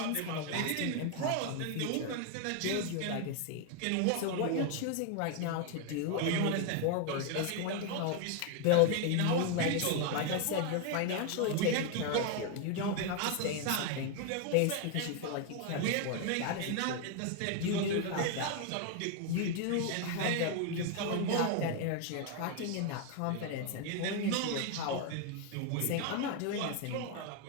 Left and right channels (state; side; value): different; both; correlation 0.01